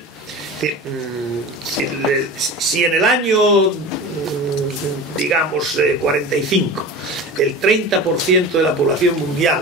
Si en el año, digamos, 45, el 30% de la población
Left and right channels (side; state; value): both; normal; correlation 0.33